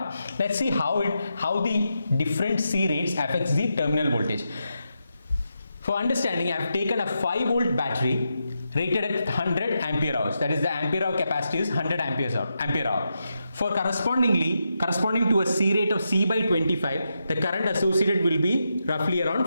Let's see how the different C rates affects the terminal voltage. For understanding, I have taken a 5 volt battery rated at 100 ampere hours, that is the ampere hour capacity is 100 ampere hour. For corresponding to a C rate of C by 25, the current associated will be roughly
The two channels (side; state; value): both; inverted; correlation -0.86